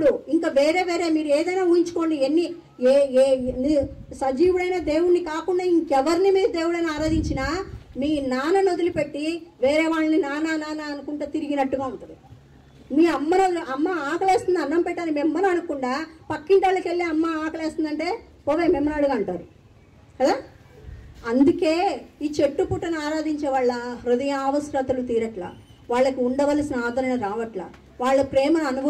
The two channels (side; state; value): both; identical; correlation 1.00